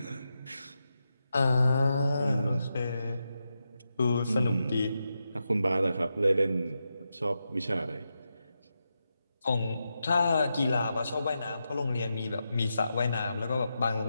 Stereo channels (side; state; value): both; inverted; correlation -0.87